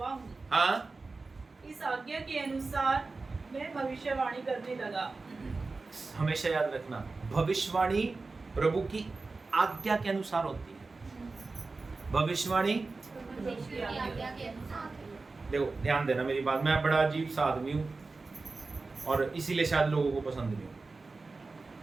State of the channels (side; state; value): left; quieter; 3.8 dB